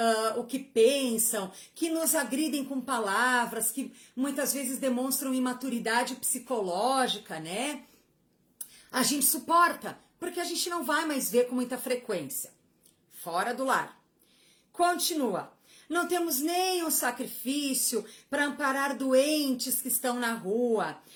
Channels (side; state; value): both; identical; correlation 1.00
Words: o que pensam, que nos agridem com palavras, que muitas vezes demonstram imaturidade psicológica, né? A gente suporta, porque a gente não vai mais ver com muita frequência. Fora do lar. Continua. Não temos nem um sacrifício para amparar doentes que estão na rua,